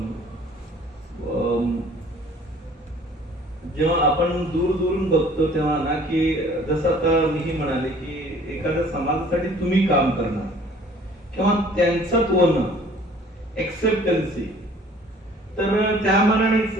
जेव्हा आपण दूरून बघतो तेव्हा ना की जसं आता मीही म्हणाले की एखाद्या समाजासाठी तुम्ही काम करणार किंवा त्यांचं होणं, एक्सेप्टन्सी, तर त्या मानानेच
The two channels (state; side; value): normal; both; correlation 0.53